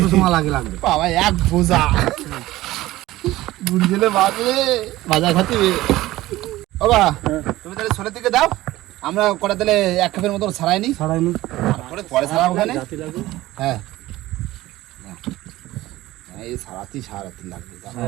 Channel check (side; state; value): left; quieter; 16.9 dB